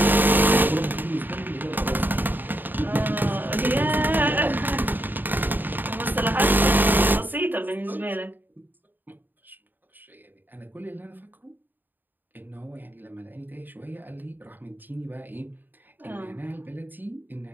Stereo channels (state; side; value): late; left; 0.091 ms